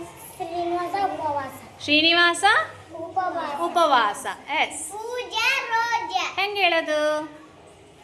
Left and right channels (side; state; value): both; identical; correlation 1.00